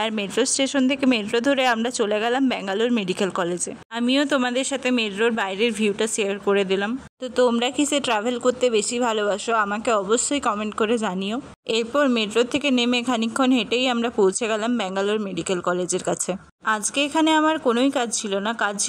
আর মেট্রো স্টেশন থেকে মেট্রো ধরে আমরা চলে গেলাম ব্যাঙ্গালোর মেডিকেল কলেজে। আমিও তোমাদের সাথে মেট্রোর বাইরের ভিউটা শেয়ার করে দিলাম। তো তোমরা কিসে ট্রাভেল করতে বেশি ভালোবাসো আমাকে অবশ্যই কমেন্ট করে জানিও। এরপর মেট্রো থেকে নেমে খানিকক্ষণ হেঁটেই আমরা পৌঁছে গেলাম ব্যাঙ্গালোর মেডিকেল কলেজের কাছে। আজকে এখানে আমার কোনোই কাজ ছিল না, কাজ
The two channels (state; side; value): identical; both; correlation 1.00